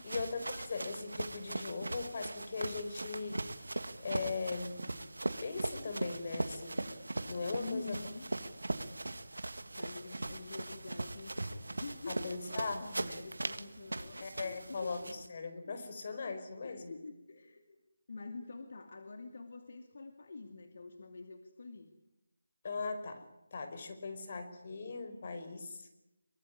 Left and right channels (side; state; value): both; inverted; correlation -0.91